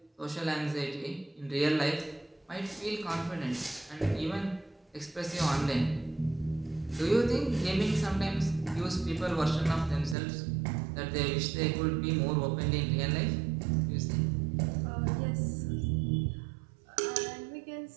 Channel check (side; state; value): left; drops out; at 10.2 s